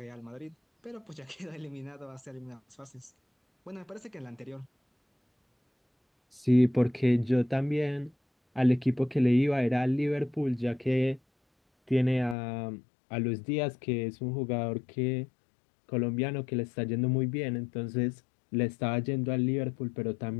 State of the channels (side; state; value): right; drops out; at 12.4 s